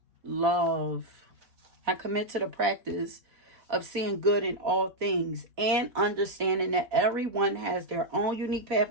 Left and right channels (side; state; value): left; late; 4.1 ms